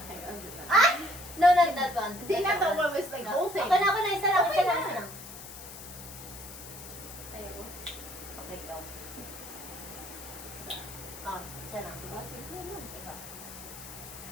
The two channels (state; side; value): noise; left; hiss, 13 dB below the sound